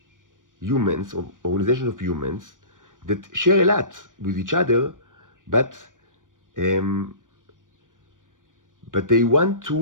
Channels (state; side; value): late; left; 0.88 ms